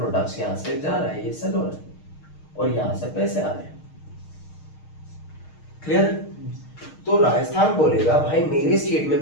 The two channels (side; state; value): right; late; 6.5 ms